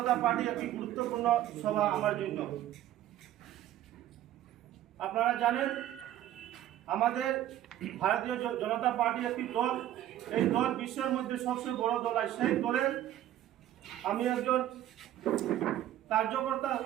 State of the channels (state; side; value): quieter; left; 12.7 dB